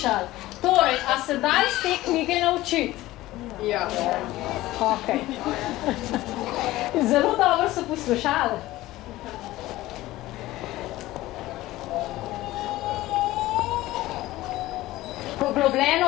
Torej, a se da iz te knjige naučiti? Ja. Ok. Zelo dobro so poslušali.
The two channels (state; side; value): quieter; right; 17.1 dB